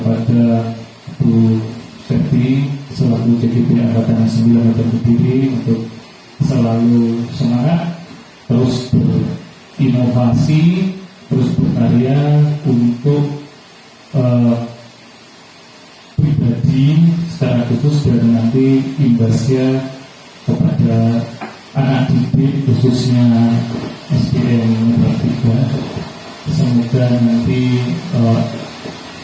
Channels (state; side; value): identical; both; correlation 1.00